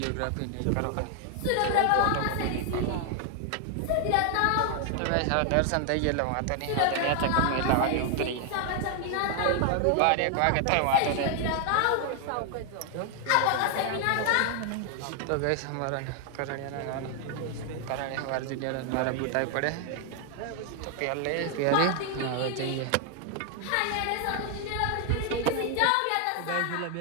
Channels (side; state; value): both; different; correlation 0.00